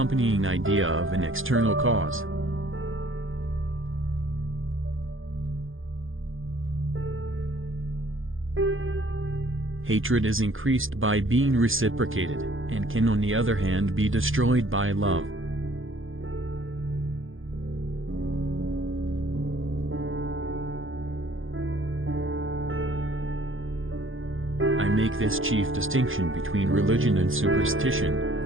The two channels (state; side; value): late; left; 0.59 ms